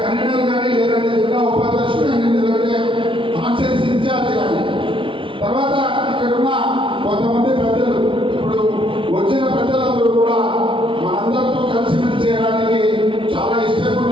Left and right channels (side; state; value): left; late; 0.25 ms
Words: కన్వీనర్ కానీ లేదంటే జిల్లా ఉపాధ్యక్షుడు కానీ లేదంటే కాన్స్టిట్యూన్సీ ఇన్ఛార్జ్ కానీ తర్వాత ఇక్కడ ఉన్న కొంతమంది పెద్దలు ఇప్పుడు వచ్చిన పెద్దలందరూ కూడా మనందరితో కలిసిమెలిసి చేయడానికి చాలా ఇష్టంగా